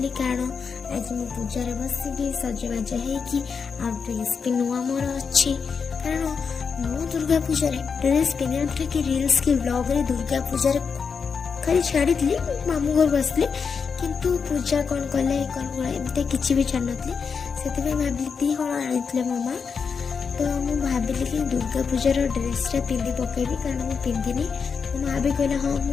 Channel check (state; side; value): quieter; right; 5.8 dB